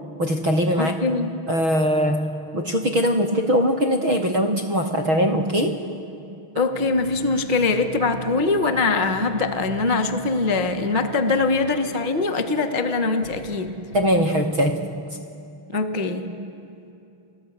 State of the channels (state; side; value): late; left; 6.3 ms